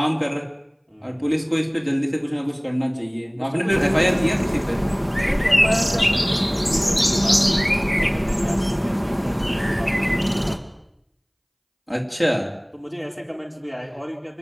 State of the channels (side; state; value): both; identical; correlation 1.00